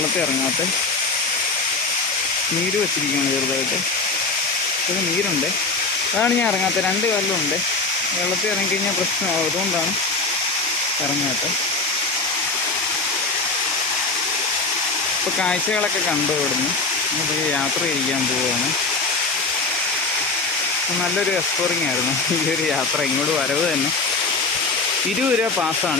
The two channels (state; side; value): quieter; right; 3.7 dB